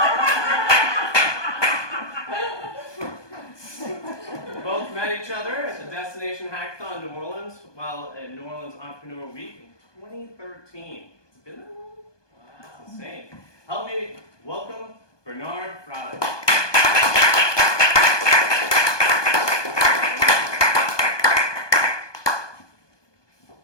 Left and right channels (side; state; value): right; late; 1.2 ms